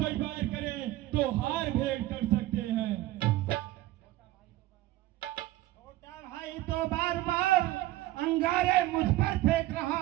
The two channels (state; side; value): quieter; left; 16.3 dB